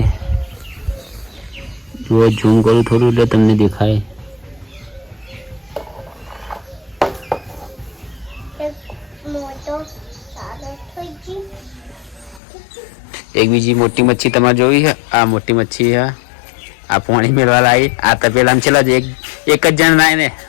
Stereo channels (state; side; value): drops out; right; at 12.4 s